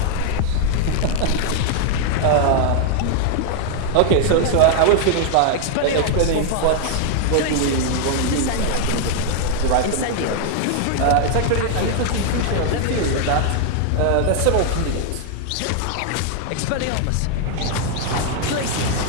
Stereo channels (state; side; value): different; both; correlation 0.00